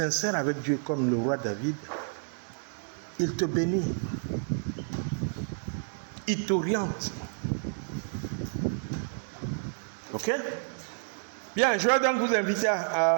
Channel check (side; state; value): left; silent; digital silence